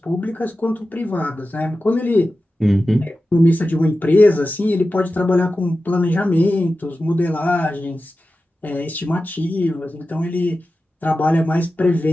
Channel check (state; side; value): normal; both; correlation 0.93